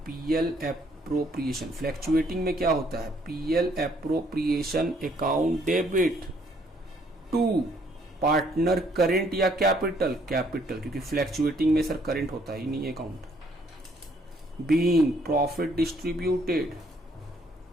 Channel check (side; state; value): both; normal; correlation 0.66